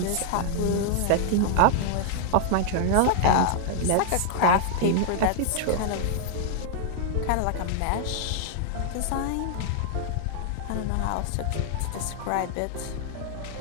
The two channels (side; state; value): both; different; correlation -0.01